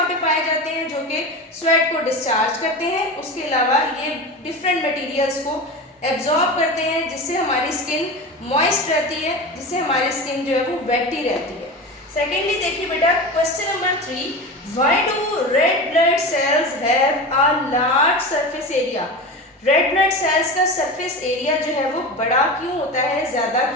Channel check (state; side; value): normal; both; correlation 0.27